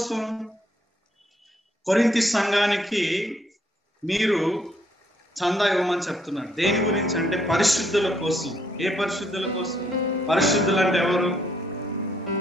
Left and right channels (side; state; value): both; normal; correlation 0.70